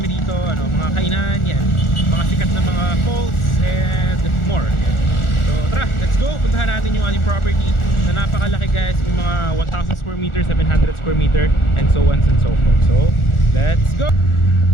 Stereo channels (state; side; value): late; right; 1.4 ms